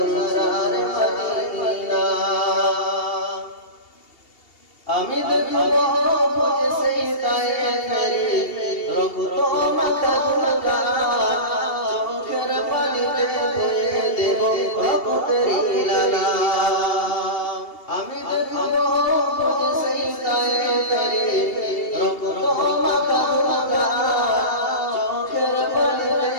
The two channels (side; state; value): right; late; 2.7 ms